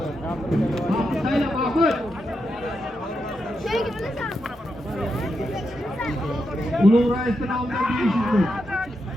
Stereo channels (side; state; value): both; normal; correlation 0.85